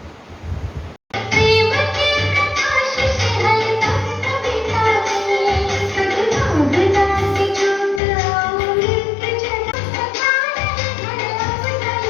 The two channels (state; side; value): drops out; right; at 8.0 s